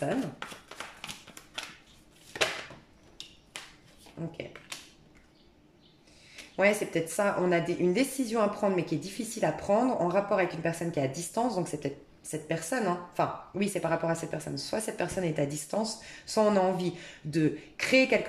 Ok. Ouais, c'est peut-être ça. On a une décision à prendre, mais qui est difficile à prendre en rapport avec une personne qui est à distance. Donc, c'est peut-être cette personne, hein. Enfin, oui, c'est par rapport à cette personne. Soit cette personne est à distance, soit on a envie de créer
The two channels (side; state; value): both; identical; correlation 1.00